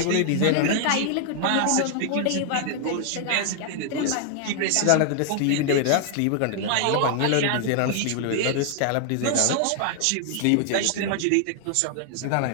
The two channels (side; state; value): both; different; correlation 0.00